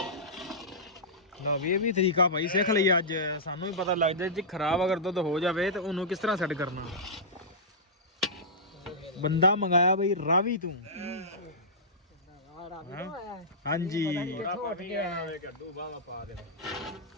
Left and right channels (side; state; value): both; normal; correlation -0.14